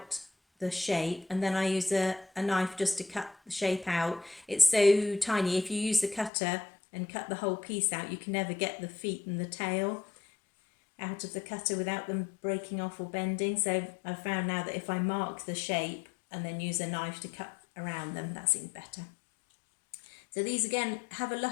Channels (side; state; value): right; drops out; at 6.3 s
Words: the shape, and then I use a knife just to cut the shape out. It's so tiny, if you use the cutter and cut the whole piece out, you can never get the feet and the tail out of the cutter without them breaking off or bending. So I've found now that if I mark the shape and then use a knife to cut around them, that seems better. So these again